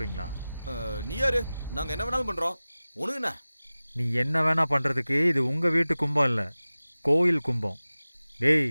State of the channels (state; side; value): inverted; both; correlation -0.97